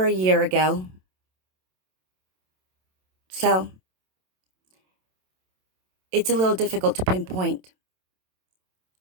a year ago. So it's a little difficult to pinpoint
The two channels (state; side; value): late; left; 27 ms